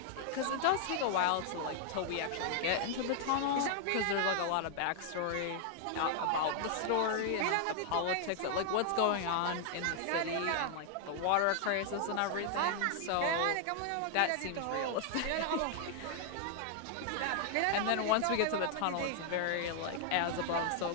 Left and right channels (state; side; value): different; both; correlation 0.00